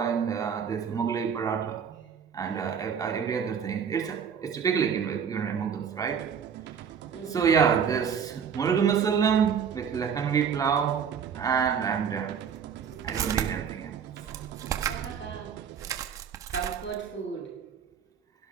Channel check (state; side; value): quieter; left; 7.3 dB